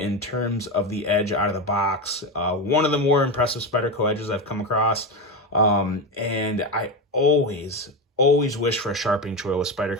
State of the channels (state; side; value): normal; both; correlation 0.16